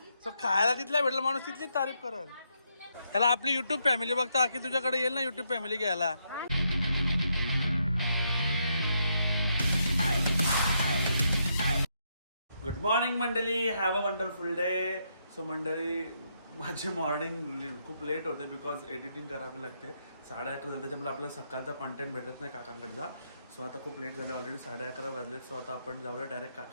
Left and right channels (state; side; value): inverted; both; correlation -0.78